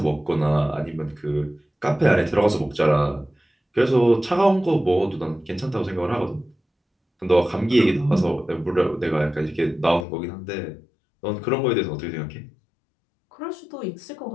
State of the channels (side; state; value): right; drops out; at 10.1 s